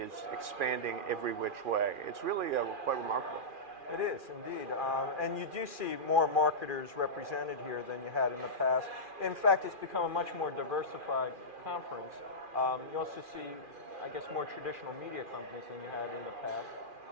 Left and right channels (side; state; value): left; late; 2.4 ms